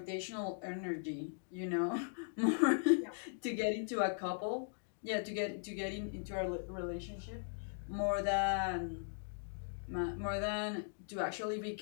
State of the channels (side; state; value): right; silent; digital silence